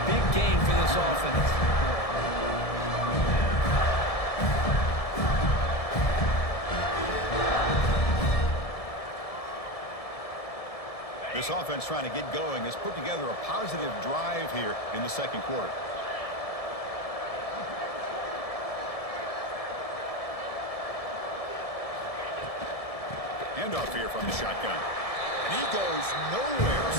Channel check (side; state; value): right; late; 1.7 ms